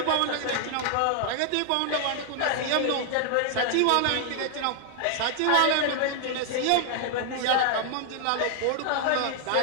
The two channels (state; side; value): different; both; correlation 0.00